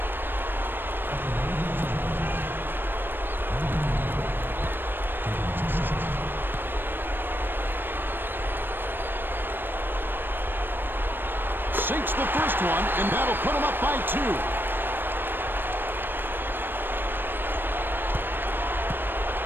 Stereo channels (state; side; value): late; left; 0.096 ms